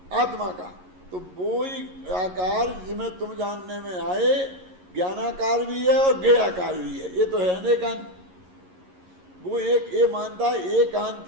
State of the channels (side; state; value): left; late; 11 ms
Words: आत्मा का। तो वो ही आकार जिसमें तुम जानने में आए ज्ञानाकार भी है और गेयाकार भी है। ये तो है अनेकांत। वो एक ये मानता है